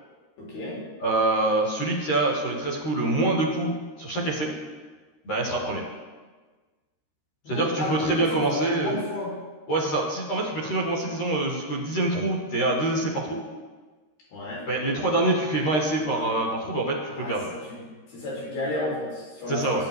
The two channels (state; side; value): late; right; 13 ms